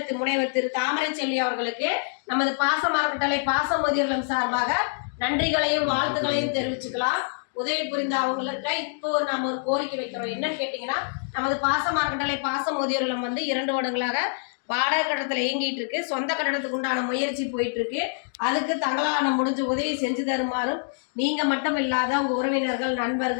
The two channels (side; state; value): right; silent; digital silence